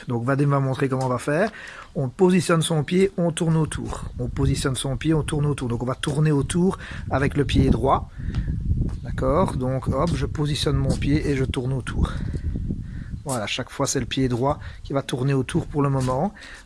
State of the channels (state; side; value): identical; both; correlation 1.00